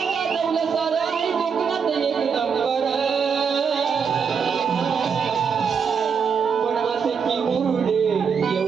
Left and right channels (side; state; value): left; quieter; 6.3 dB